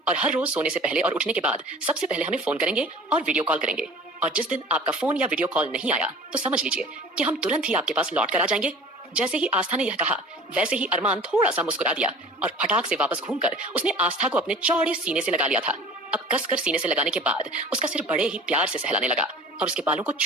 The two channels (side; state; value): both; normal; correlation 0.42